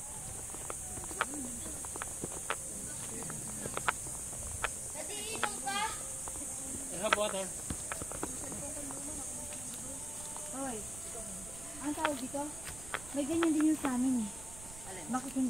I have water. Hoy, ang tawag dito? May ganyan din yung sa amin eh. Bakit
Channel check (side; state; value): right; noise; rumble, 13 dB below the sound